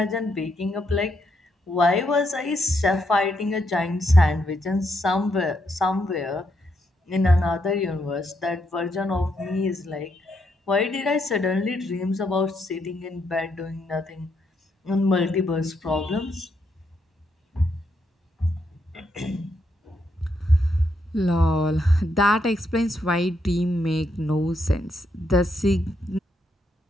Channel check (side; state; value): both; normal; correlation 0.78